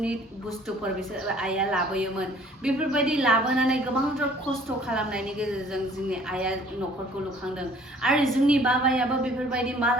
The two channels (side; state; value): both; normal; correlation 0.55